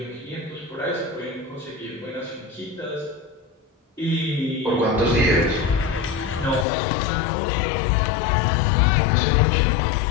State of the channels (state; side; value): drops out; right; at 6.7 s